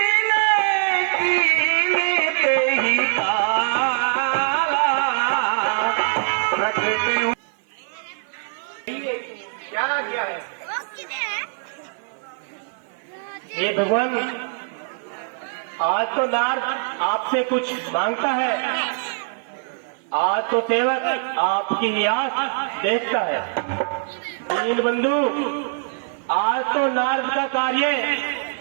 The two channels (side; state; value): left; silent; 58 dB below the other